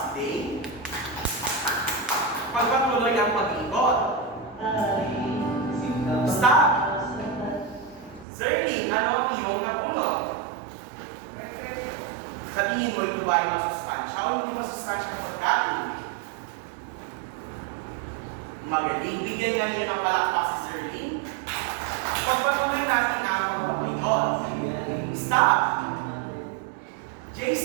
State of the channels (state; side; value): drops out; left; at 8.2 s